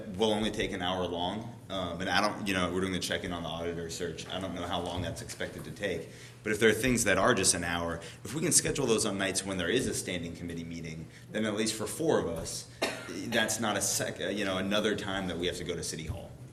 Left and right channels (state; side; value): identical; both; correlation 1.00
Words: will only take an hour long, and I don't, we're doing the check-in on the auditor search. I don't know how long that's expected to take. But if there are things that are just an hour, if we can schedule those on nights when there is a standing committee meeting, then at least for 4 of us, that's not another time that we have to go to City Hall.